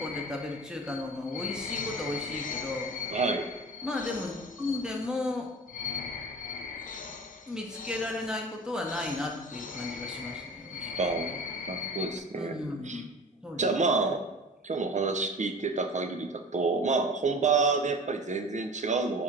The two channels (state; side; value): normal; both; correlation 0.38